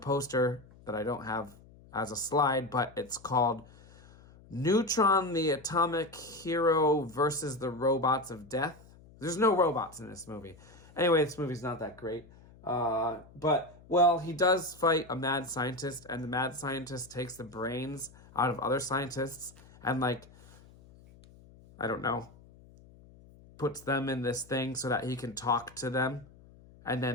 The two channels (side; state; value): left; noise; hum, 23 dB below the sound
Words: that I don't have as a slide, but it's called Neutron, the Atomic Hero versus the Robots of Death. There's no robots in this movie. Anyway, this movie's not that great. But, well, he does fight a mad scientist, and the mad scientist takes the brains out of other scientists and, like, I don't know, puts them in this thing so that he can talk to them and